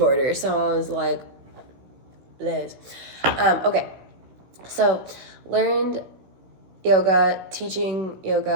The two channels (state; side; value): late; left; 16 ms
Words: So I was like, Liz. Okay, so learned yoga, teaching